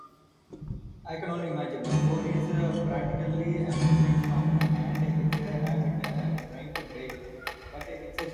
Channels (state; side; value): identical; both; correlation 1.00